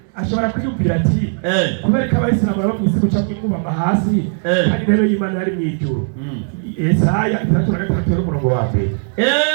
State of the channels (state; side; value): silent; left; 57 dB below the other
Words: ashobora kwiyumvira ati kubera ko abayisilamu baba mu isi guca mwikubama hasi kandi intebe y'Imana yari mu ijuru. Yesaya 3:3